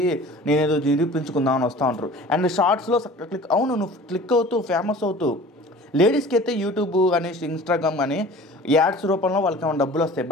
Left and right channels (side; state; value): both; normal; correlation 0.43